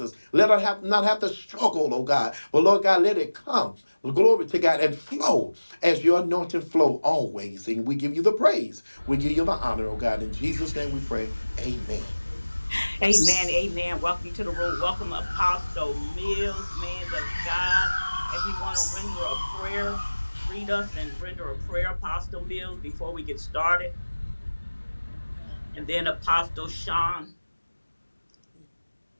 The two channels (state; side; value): inverted; both; correlation -1.00